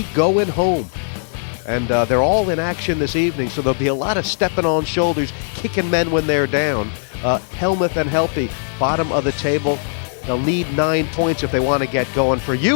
going home. And they're all in action this evening, so there'll be a lot of stepping on shoulders, kicking men when they're down. Hellmuth and Helppi, bottom of the table. They'll need 9 points if they want to get going. For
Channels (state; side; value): silent; right; digital silence